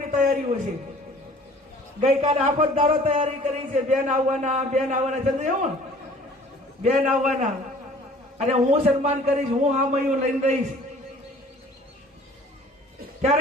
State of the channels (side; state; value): both; normal; correlation 0.51